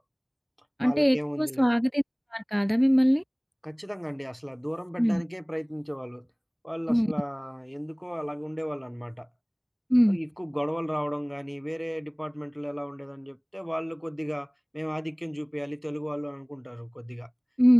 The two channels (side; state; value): both; identical; correlation 1.00